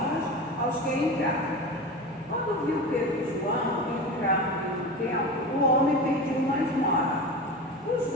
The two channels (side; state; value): both; normal; correlation 0.28